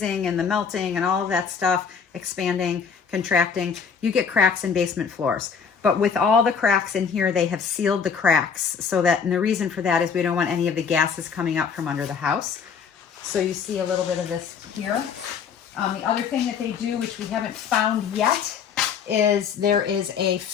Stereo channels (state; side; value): quieter; right; 6.4 dB